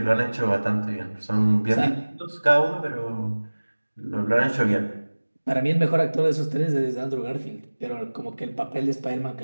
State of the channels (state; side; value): inverted; both; correlation -1.00